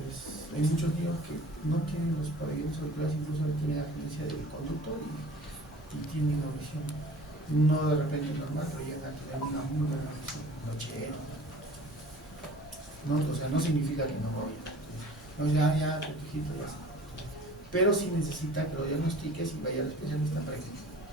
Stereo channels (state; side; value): normal; both; correlation 0.45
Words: hay muchos niños que no tienen los pabellones auriculares, incluso tienen agenencia del conducto y tienen una visión, no de repente normal, pero llegan a tener una muy buena visión, nochero, ¿no? O sea, no significa que no vaya. No, ya, hijito, ya está. Pero sí necesita que lo diagnostiques y vaya al especialista para que